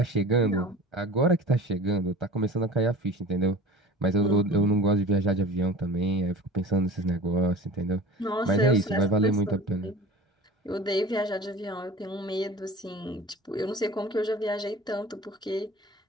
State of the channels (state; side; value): normal; both; correlation 0.39